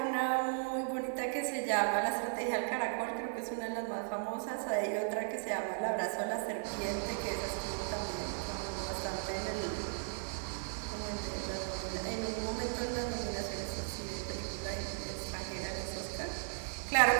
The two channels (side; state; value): left; silent; digital silence